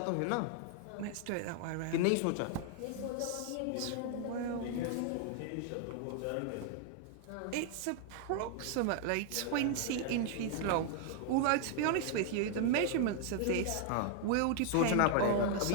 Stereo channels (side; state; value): both; different; correlation 0.00